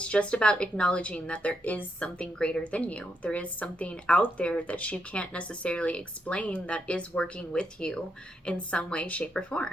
just about acknowledging that there is something greater than you. There is something out there that you can't necessarily explain that is working with you in some way, shape, or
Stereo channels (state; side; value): normal; both; correlation 0.81